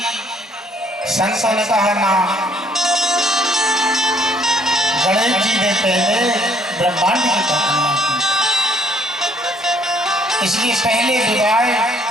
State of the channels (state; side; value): normal; both; correlation 0.63